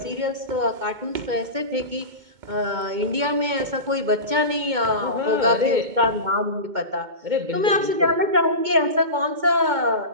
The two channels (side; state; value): left; late; 2.2 ms